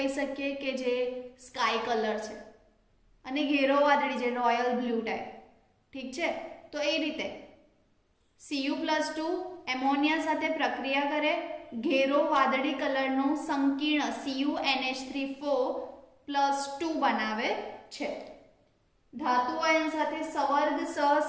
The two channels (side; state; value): both; identical; correlation 1.00